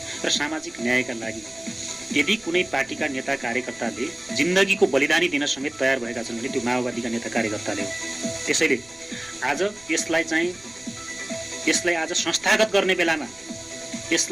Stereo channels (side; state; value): right; noise; rumble, 26 dB below the sound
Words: र सामाजिक न्यायका लागि यदि कुनै पार्टीका नेता कार्यकर्ताले जिन्दगीको बलिदानी दिन समेत तयार भएका छन् भने त्यो माओवादीका नेता कार्यकर्ताले हो। त्यसैले आज यसलाई आज संस्थागत गर्ने बेलामा,